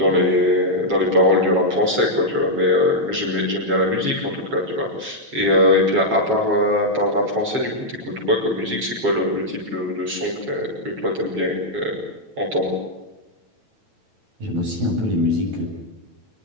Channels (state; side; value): late; left; 9.1 ms